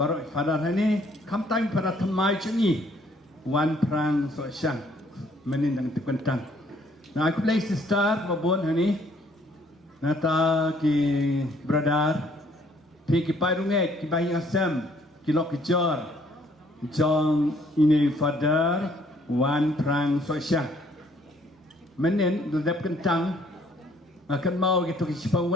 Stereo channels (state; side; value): normal; both; correlation 0.63